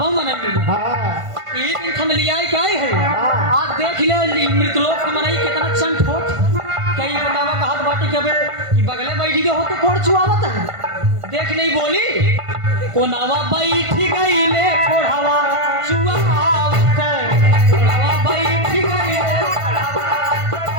मनई मिली। एक दिन हम लिया क्या है आज देख ले मृतलोक की मनई कितना चंट होत कई बतावा कहत बाटी के बे बगले बैठी के हो तो कोड़ चुआवत है देख नहीं बोली कोनावा बैठी गई ले कोढ़ावा चुआवत कोनावा बैठी गई ले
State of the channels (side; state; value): left; late; 1.5 ms